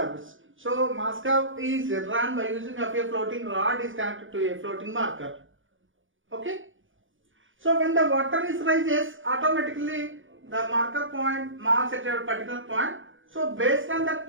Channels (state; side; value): late; left; 0.57 ms